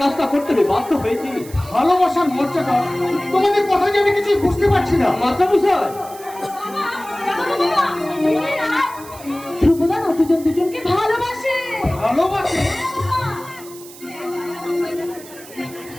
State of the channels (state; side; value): noise; right; hiss, 18 dB below the sound